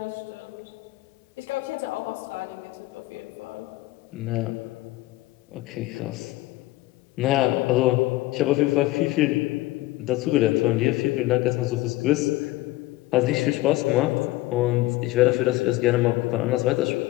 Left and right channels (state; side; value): quieter; right; 18.3 dB